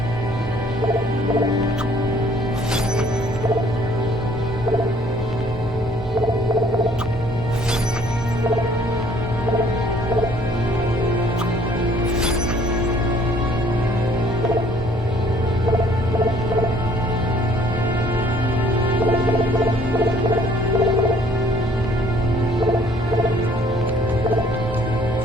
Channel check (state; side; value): normal; both; correlation 0.59